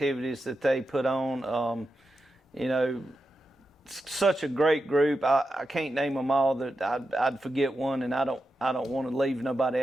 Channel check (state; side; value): normal; both; correlation 0.89